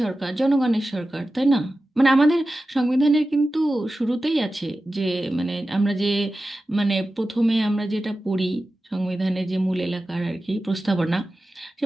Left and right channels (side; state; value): both; normal; correlation 0.94